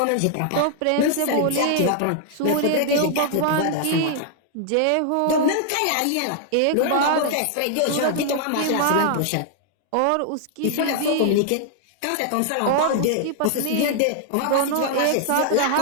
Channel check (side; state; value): both; different; correlation 0.00